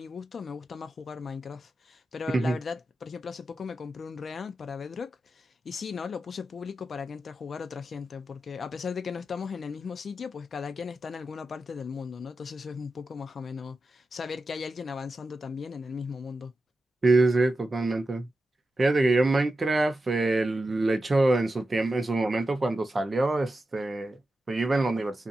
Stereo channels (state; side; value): normal; both; correlation 0.91